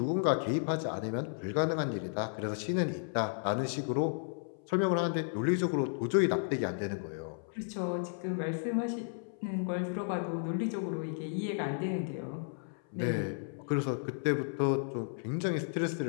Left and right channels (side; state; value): right; silent; 55 dB below the other